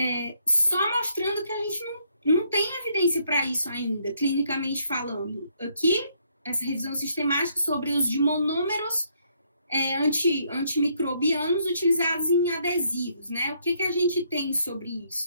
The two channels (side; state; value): both; inverted; correlation -0.70